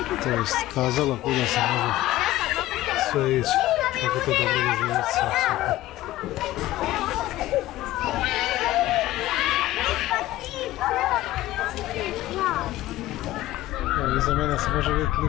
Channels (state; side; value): quieter; right; 15.8 dB